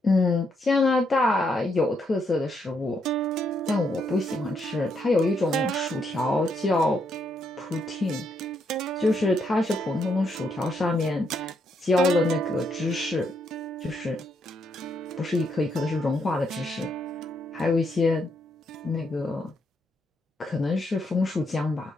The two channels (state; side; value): normal; both; correlation 0.77